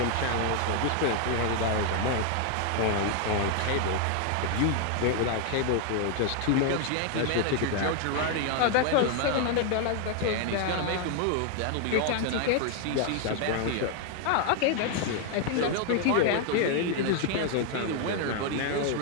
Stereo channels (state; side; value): different; both; correlation 0.01